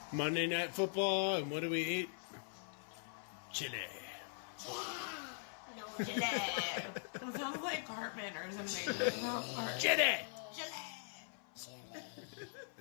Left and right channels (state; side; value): silent; right; 50 dB below the other